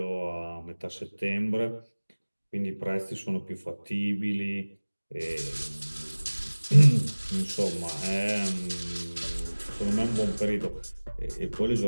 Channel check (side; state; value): both; inverted; correlation -1.00